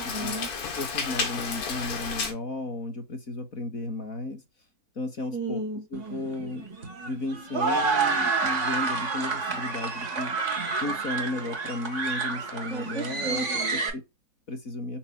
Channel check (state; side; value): late; right; 4.5 ms